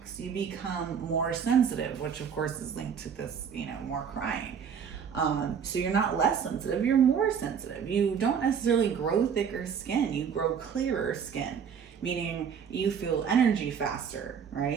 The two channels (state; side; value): quieter; left; 7.2 dB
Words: you become more sensitive, which of course is linked to this, more crying. So you're not less sensitive, you're more sensitive. You don't necessarily grow thicker skin, you grow clearer skin, meaning you feel energy faster,